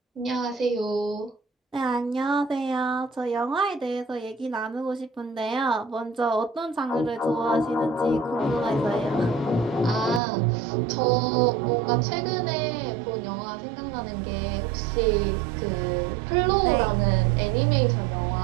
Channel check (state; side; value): drops out; left; at 10.2 s